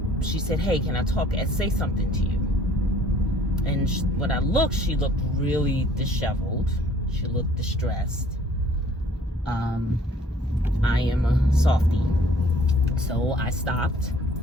She said, "Hey, can I talk and say something to you?" And when I looked, she looked really disheveled. She looked distressed. I am a softie, so I stopped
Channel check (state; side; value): normal; both; correlation 0.56